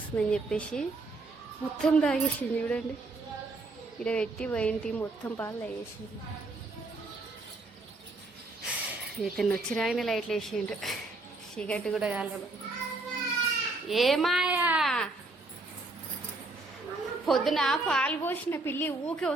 చెప్పేసి మొత్తం తాగేసింది. చూడండి ఇక్కడ పెట్టి పోయింటి మొత్తం పాలు తాగేసింది. ఇతను వచ్చి రాగానే లైట్లు వేసిండు. చీకటి కూడా కాలేదు. ఏమాయా పొద్దున పాలు పోసిన పిల్లి ఊకే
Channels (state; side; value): quieter; left; 3.2 dB